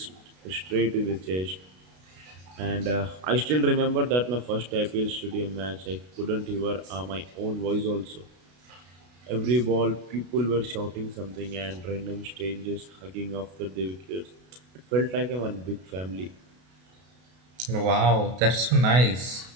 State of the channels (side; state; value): left; late; 32 ms